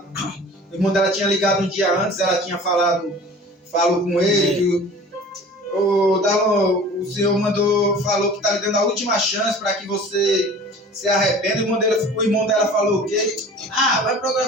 o irmão dela tinha ligado um dia antes, ela tinha falou com ele, que o Senhor falou que está lhe dando a última chance para que você se arrependa. O irmão dela falou o quê? Vai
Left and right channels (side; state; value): both; normal; correlation 0.43